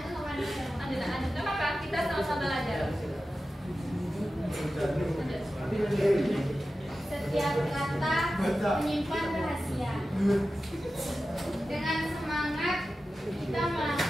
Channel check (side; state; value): both; normal; correlation 0.93